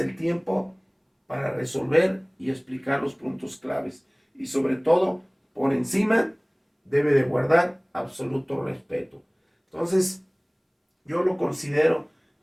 el tiempo para resolver y explicar los puntos claves. Y sobre todo, por encima, debe de guardar absoluto respeto. Entonces, yo lo considero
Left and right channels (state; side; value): identical; both; correlation 1.00